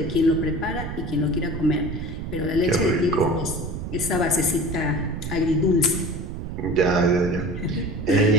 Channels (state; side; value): noise; right; rumble, 6 dB below the sound